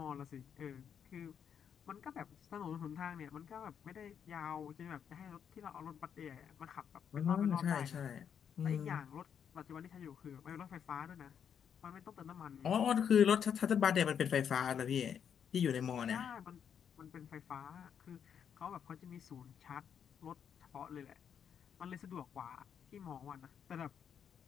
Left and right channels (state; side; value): quieter; right; 8.0 dB